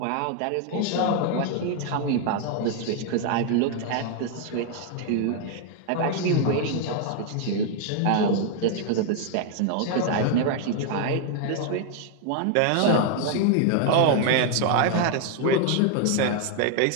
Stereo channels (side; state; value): both; different; correlation 0.00